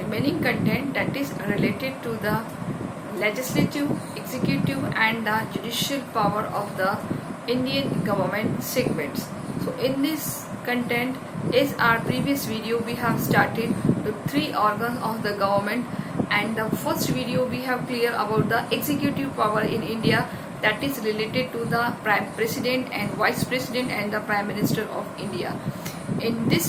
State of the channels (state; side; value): identical; both; correlation 1.00